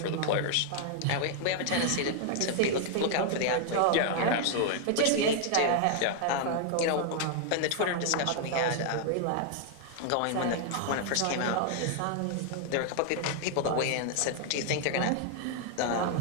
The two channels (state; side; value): different; both; correlation 0.00